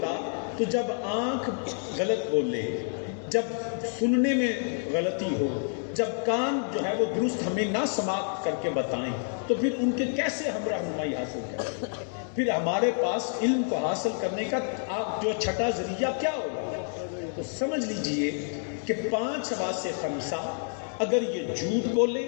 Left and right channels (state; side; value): silent; right; 59 dB below the other